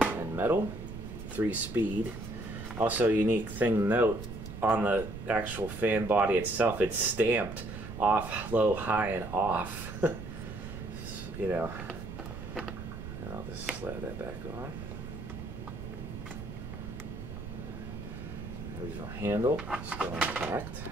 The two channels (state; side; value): noise; right; rumble, 9 dB below the sound